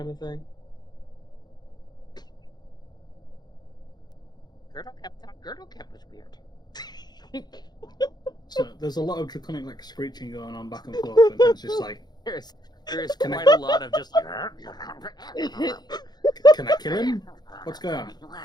of thing. Gertle Kep thought Gertle Kep was weird. So there's a lot of draconic like screeching going on back and forth, and it's just like, There is quite a lot of just like. can I kill him? What's going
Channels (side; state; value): right; late; 0.20 ms